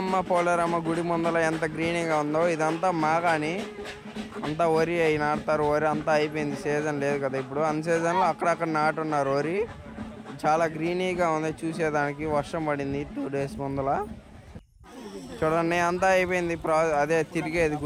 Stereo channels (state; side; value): identical; both; correlation 1.00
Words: పోలేరమ్మ గుడి ముందర ఎంత గ్రీనీగా ఉందో. ఇదంతా మాగాని అంతా వరి అయి నాటుతారు. వరి అంతా అయిపోయింది, సీజన్ లేదు కదా ఇప్పుడు. అన్ సీజన్లో అక్కడక్కడ నాటున్నారు వరి. చాలా గ్రీనీగా ఉంది చూసేదానికి. వర్షం పడింది 2 days ముందల. చూడండి అంతా అయిపోయింది. అదే తిరిగేది